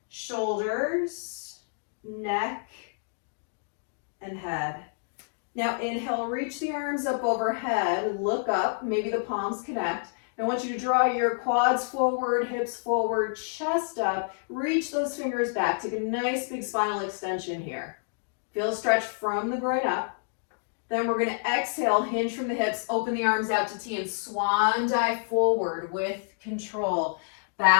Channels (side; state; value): right; silent; digital silence